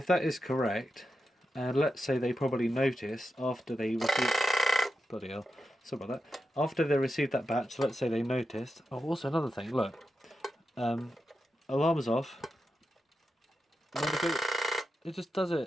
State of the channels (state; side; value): normal; both; correlation 0.89